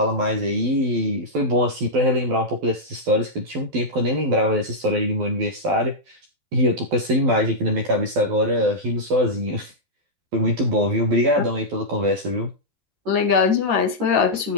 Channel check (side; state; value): left; late; 12 ms